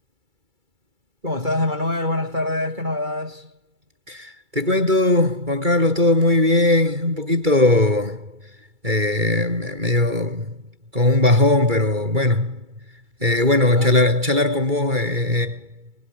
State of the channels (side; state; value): left; late; 2.3 ms